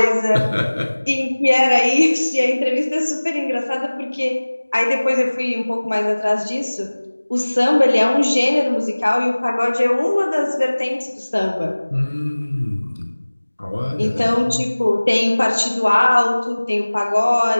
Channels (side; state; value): both; inverted; correlation -1.00